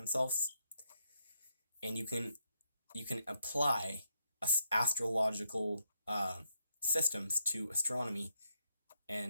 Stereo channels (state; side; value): inverted; both; correlation -0.81